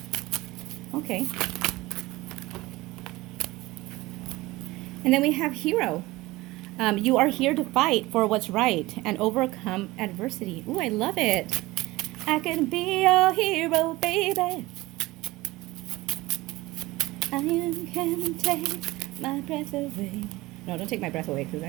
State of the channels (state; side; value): quieter; left; 19.8 dB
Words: Okay. And then we have hero. You are here to fight for what's right and overcome adversity. Ooh, I love it. I can be your hero, baby. I can take my breath away. No, don't take my breath away because